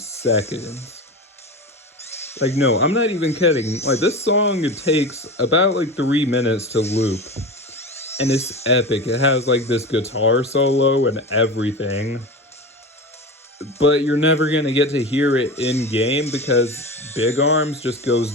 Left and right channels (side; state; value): both; normal; correlation 0.27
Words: Like, no, I'm not even kidding. Like, this song, it takes about, like, 3 minutes to loop. And it's epic. It has, like, this guitar solo and everything. But you're never gonna get to hear it in-game because Big Arms just